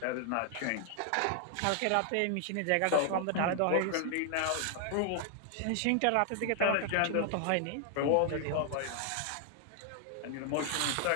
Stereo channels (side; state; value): both; different; correlation 0.00